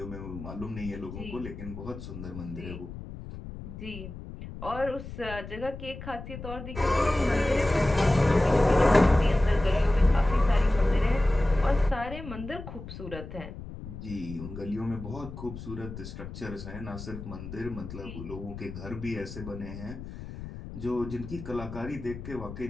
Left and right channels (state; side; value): noise; left; rumble, 11 dB below the sound